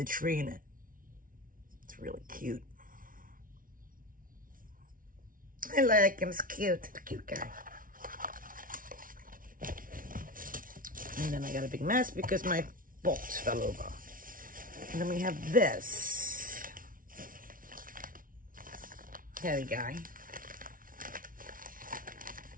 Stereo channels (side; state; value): left; late; 0.40 ms